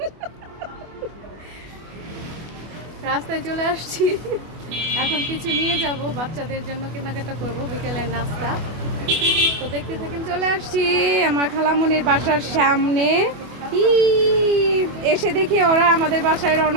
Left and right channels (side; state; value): left; late; 24 ms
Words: রাস্তায় চলে আসছি, এখন কিছু নিয়ে যাব, বাচ্চাদের জন্য কেনাকাটা করব, বিকেলের নাস্তা। তো দেখতে থাকেন। চলে আসছি আমার খালামণির বাসার সামনে। এসে দেখি ওরা আমাদের বাসায়